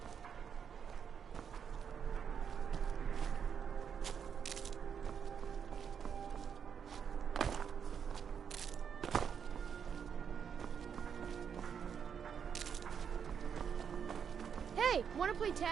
Hey, wanna play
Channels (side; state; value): left; quieter; 7.4 dB